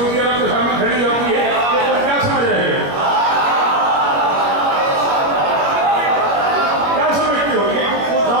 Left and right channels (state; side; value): late; left; 21 ms